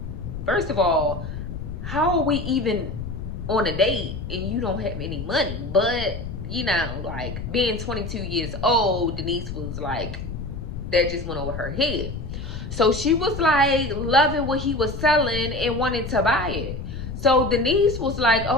first of all, how are we even on a date and you don't have any money? But, you know, like, being 22 years old, Denise was like, that just went over her head. So she was like loving what he was selling and wanted to buy it. So Denise was like,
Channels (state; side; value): noise; left; rumble, 7 dB below the sound